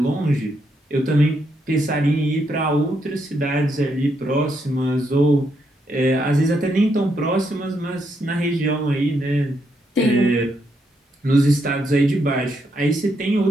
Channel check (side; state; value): both; normal; correlation 0.78